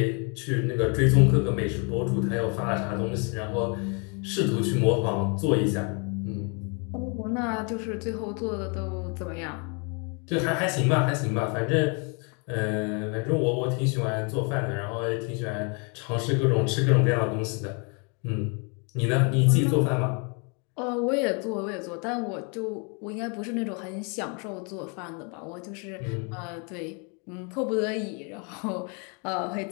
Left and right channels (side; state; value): right; quieter; 35.3 dB